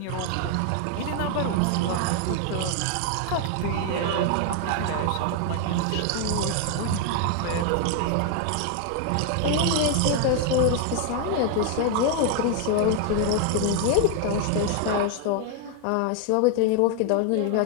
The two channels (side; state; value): both; different; correlation 0.00